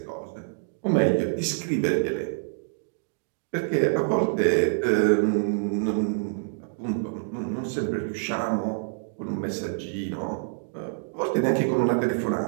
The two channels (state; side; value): silent; left; digital silence